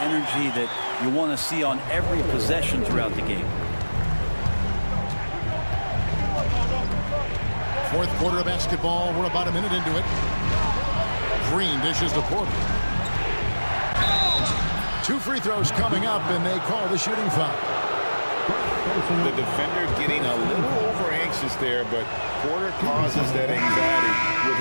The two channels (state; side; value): inverted; both; correlation -1.00